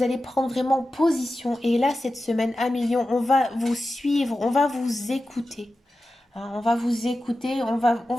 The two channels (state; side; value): normal; both; correlation 0.93